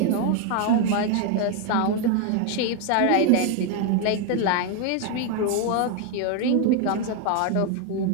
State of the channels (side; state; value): both; different; correlation 0.01